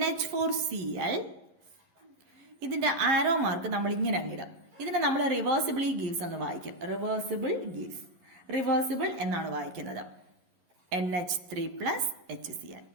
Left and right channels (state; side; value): late; left; 11 ms